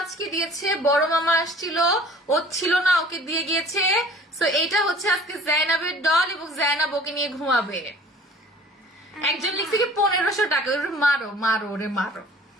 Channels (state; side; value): normal; both; correlation 0.49